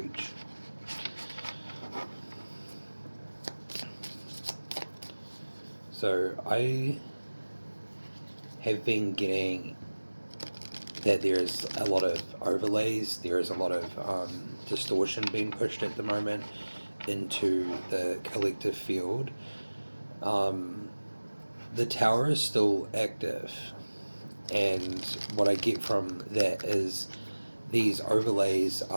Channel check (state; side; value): inverted; both; correlation -1.00